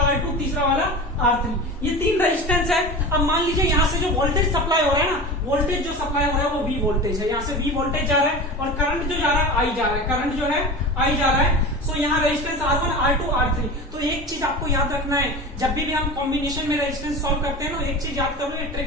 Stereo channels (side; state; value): both; normal; correlation 0.31